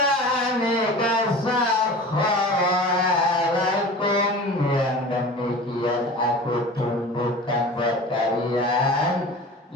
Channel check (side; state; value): both; normal; correlation 0.37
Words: sakhkhara lakum, yang demikian aku tundukkan buat kalian,